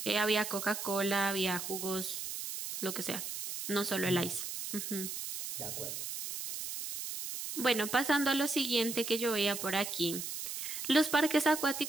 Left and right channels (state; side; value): noise; right; hiss, 6 dB below the sound